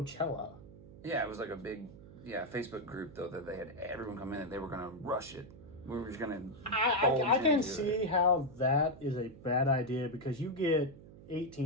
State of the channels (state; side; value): noise; right; hum, 18 dB below the sound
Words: Yeah, it was like a big Facebook group though that they had everyone come in and they were gonna rush it. We were just gonna. I can see how that is a bad idea because you get